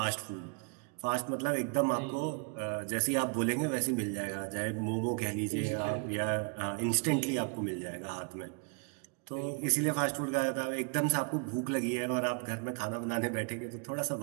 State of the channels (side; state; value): left; quieter; 35.7 dB